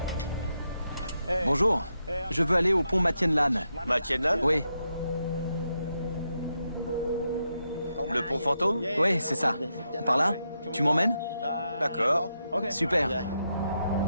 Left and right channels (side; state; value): both; inverted; correlation -0.84